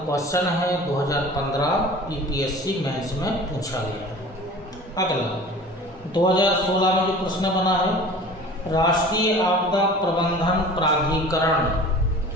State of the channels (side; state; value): both; normal; correlation 0.41